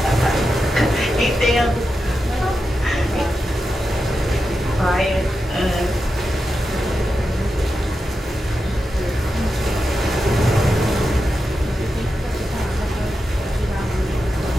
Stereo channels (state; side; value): normal; both; correlation 0.89